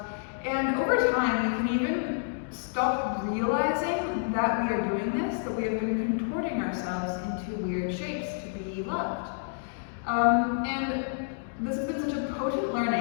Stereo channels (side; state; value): right; silent; digital silence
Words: And over time, we can even stop realizing that we are doing this, that we have been contorting ourselves into weird shapes to be loved. And this has been such a potent